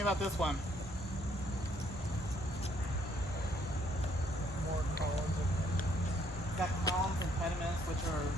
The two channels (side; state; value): both; normal; correlation 0.67